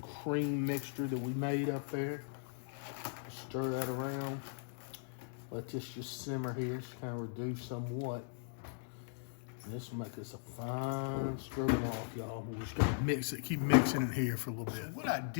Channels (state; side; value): silent; right; digital silence